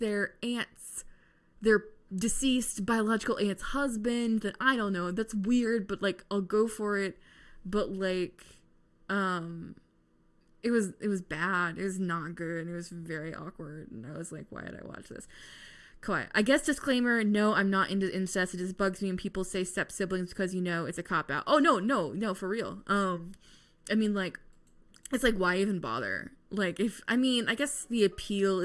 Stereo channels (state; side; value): identical; both; correlation 1.00